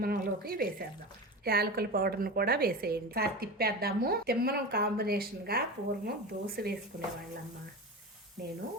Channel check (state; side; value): normal; both; correlation 0.27